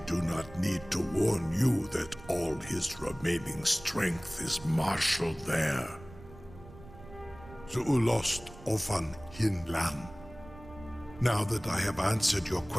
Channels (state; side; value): noise; right; rumble, 18 dB below the sound